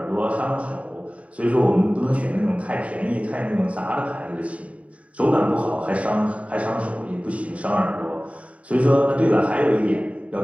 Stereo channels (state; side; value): late; left; 0.066 ms